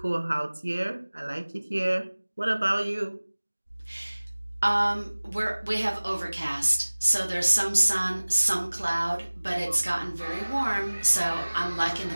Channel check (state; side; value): inverted; both; correlation -1.00